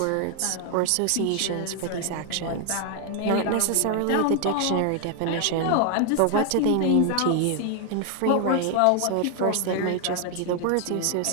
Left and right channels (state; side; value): different; both; correlation 0.00